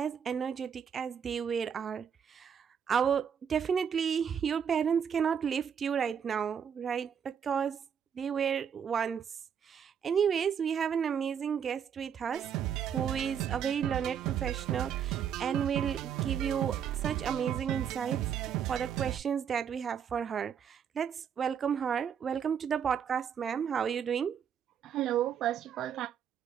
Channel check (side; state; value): left; quieter; 7.9 dB